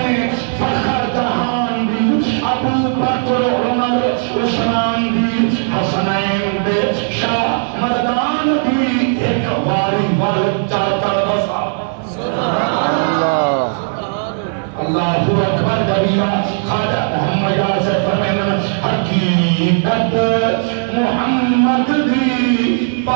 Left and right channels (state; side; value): silent; left; digital silence